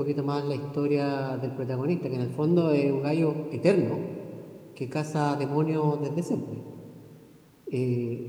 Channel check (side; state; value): both; identical; correlation 1.00